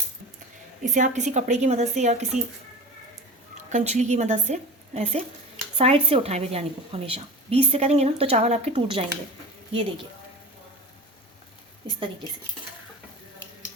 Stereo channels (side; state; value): both; normal; correlation 0.33